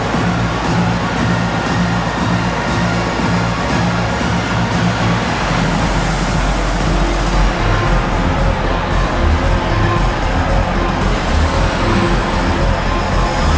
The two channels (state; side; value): identical; both; correlation 1.00